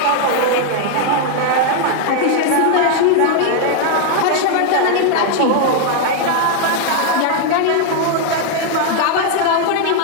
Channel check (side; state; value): both; different; correlation 0.00